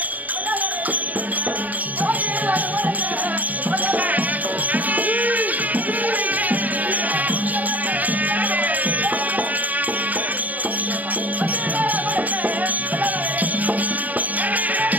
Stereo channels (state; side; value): late; left; 0.078 ms